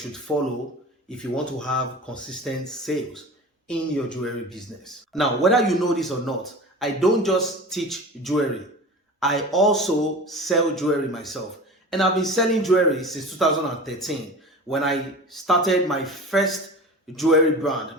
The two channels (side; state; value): both; normal; correlation 0.35